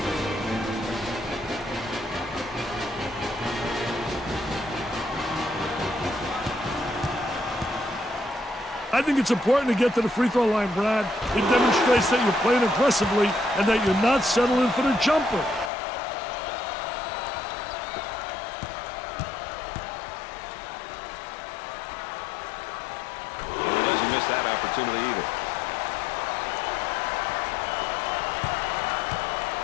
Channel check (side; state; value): right; drops out; at 15.7 s